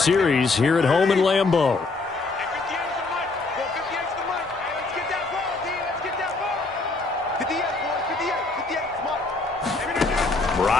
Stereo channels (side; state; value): right; quieter; 3.6 dB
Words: here at home in Lambeau.